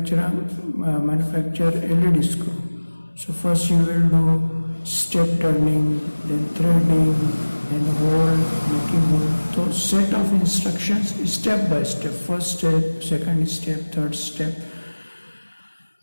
LED screw. So first you will do step turning, then threading, then hole, making hole. So set of instructions step by step. First step, second step, third step.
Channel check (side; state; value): both; inverted; correlation -1.00